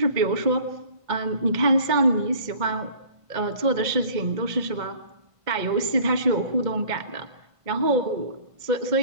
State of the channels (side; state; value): left; late; 1.5 ms